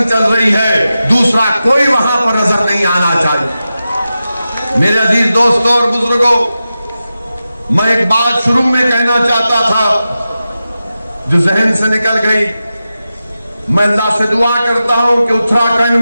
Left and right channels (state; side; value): inverted; both; correlation -0.92